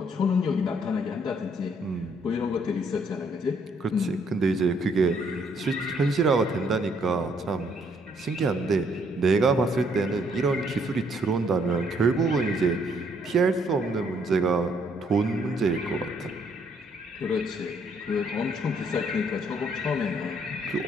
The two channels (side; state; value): both; normal; correlation 0.68